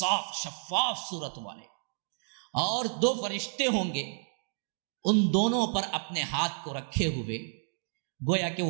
شفاف صورت والے۔ اور 2 فرشتے ہوں گے، ان دونوں پر اپنے ہاتھ کو رکھے ہوئے، گویا کہ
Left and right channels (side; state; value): left; silent; 57 dB below the other